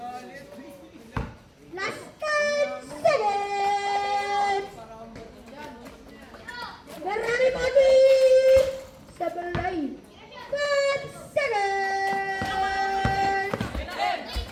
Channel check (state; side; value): identical; both; correlation 1.00